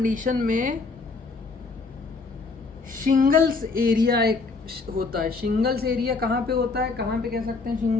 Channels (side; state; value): right; quieter; 4.1 dB